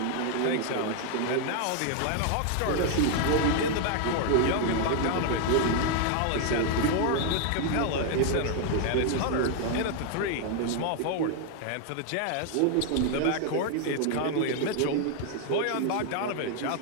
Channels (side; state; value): both; different; correlation 0.00